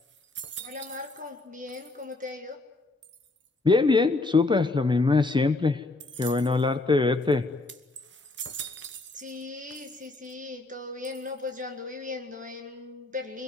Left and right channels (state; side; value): quieter; right; 3.2 dB